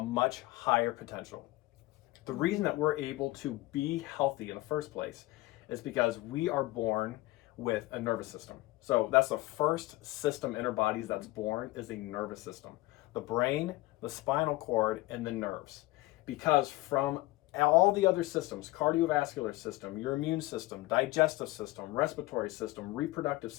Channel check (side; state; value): right; quieter; 19.2 dB